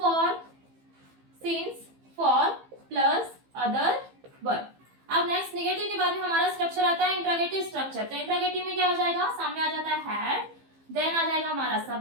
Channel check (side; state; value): left; late; 15 ms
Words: for plus other word. अब नेक्स्ट नेगेटिव के बाद में हमारा स्ट्रक्चर आता है इंट्रोगेटिव स्ट्रक्चर। तो इंट्रोगेटिव में क्या हो जाएगा, सामने आ जाता है हैड, देन आ जाएगा हमारा